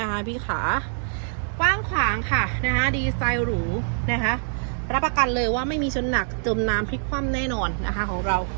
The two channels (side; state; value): left; silent; 62 dB below the other